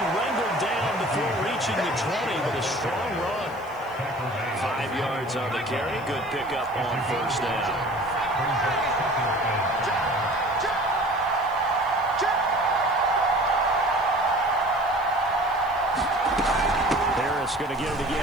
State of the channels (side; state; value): left; noise; hiss, 26 dB below the sound